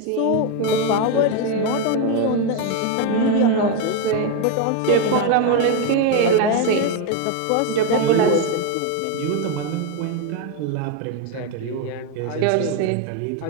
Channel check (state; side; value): different; both; correlation 0.02